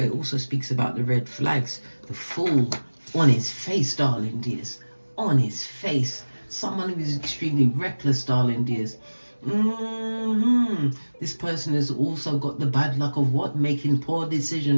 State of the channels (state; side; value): inverted; both; correlation -1.00